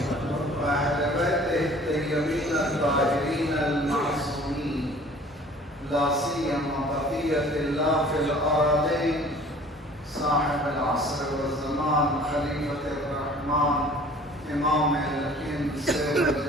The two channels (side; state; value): both; normal; correlation 0.50